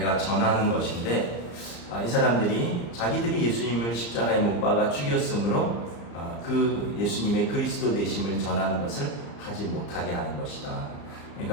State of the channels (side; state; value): right; late; 34 ms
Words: 전하는 것인데 이 사람들이 자기들이 예수님을 십자가에 못 박아 죽였으므로 그 예수님의 그리스도 되심을 전하는 것을 하지 못하게 하는 것이다.